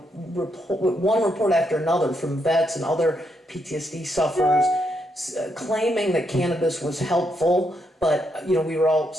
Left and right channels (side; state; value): both; normal; correlation 0.78